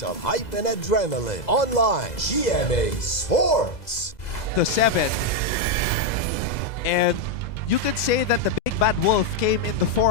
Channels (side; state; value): right; late; 2.0 ms